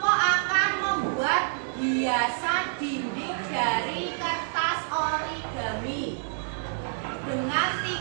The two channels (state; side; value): silent; left; 60 dB below the other